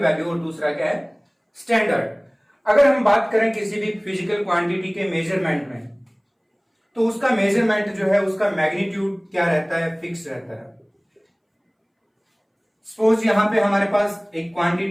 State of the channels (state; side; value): identical; both; correlation 1.00